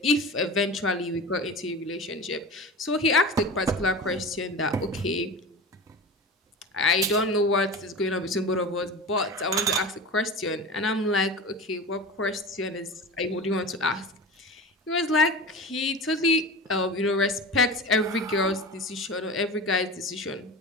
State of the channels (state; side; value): normal; both; correlation 0.31